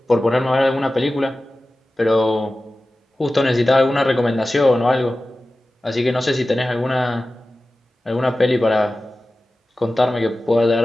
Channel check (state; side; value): normal; both; correlation 0.95